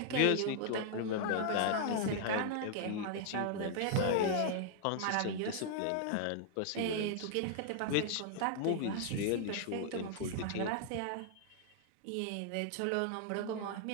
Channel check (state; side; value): different; both; correlation -0.01